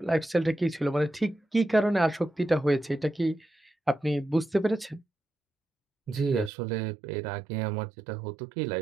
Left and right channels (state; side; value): drops out; left; at 6.5 s